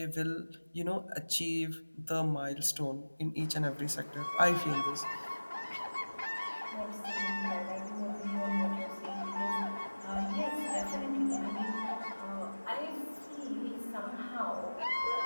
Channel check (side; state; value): both; inverted; correlation -1.00